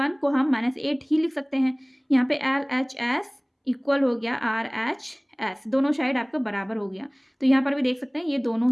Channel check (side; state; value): both; identical; correlation 1.00